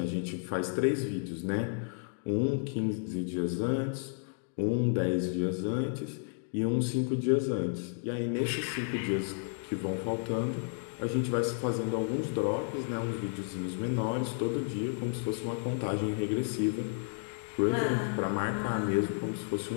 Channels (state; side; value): silent; right; 56 dB below the other